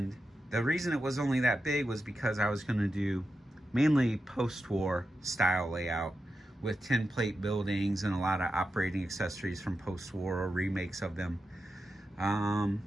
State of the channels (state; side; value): normal; both; correlation 0.89